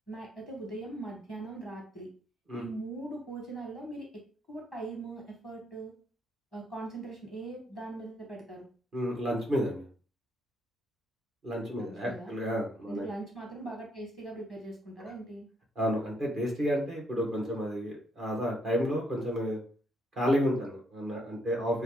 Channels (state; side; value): normal; both; correlation 0.73